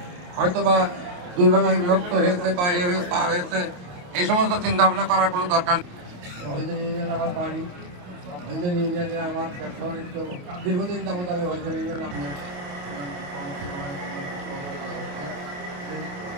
হয়তোবা দুই ভাগে বিভক্ত হয়েছে বা এ হয়েছে তা হয়েছে, এই সমস্ত চিন্তা ভাবনা করার কোনো দরকার নেই। আমার বাড়ি ইউনিয়নে আমার ব্যবসা বাণিজ্য দীর্ঘদিন যাবত আমি ইউনিয়নে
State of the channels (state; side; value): late; left; 28 ms